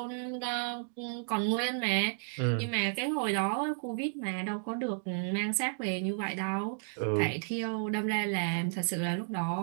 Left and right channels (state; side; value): silent; left; digital silence